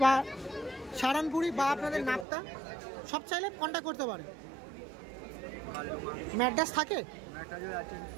বা সাহারানপুরি বা আপনাদের নাপ্তা সব চাইলে কন্ট্যাক্ট করতে পারে। ম্যাড্রাস থাকে?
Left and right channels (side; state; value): left; drops out; at 2.2 s